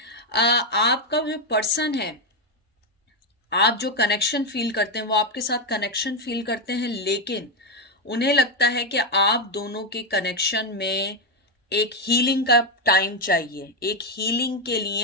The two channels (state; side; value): normal; both; correlation 0.06